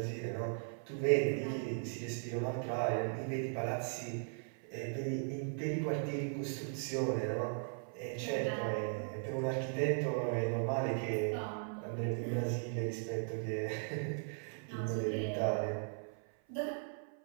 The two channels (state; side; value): silent; left; 52 dB below the other